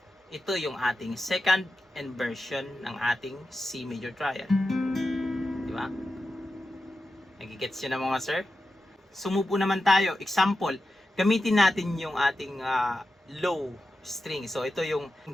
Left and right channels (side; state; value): both; normal; correlation 0.91